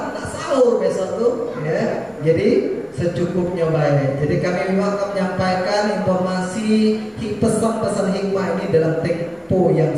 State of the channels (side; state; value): both; identical; correlation 1.00